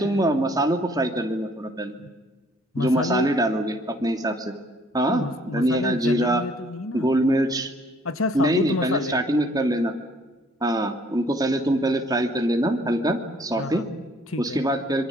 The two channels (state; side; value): normal; both; correlation 0.61